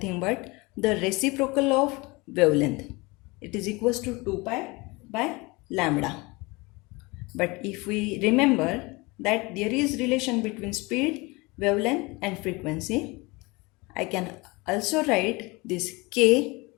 but the reciprocal of wavelength. It is equals to 2 pi by lambda. But if we remember that there is relation between speed, wavelength and frequency, I can also write this k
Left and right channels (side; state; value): right; quieter; 24.9 dB